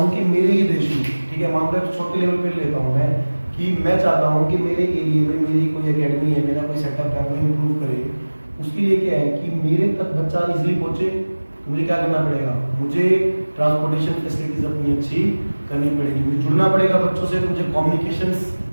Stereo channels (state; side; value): inverted; both; correlation -1.00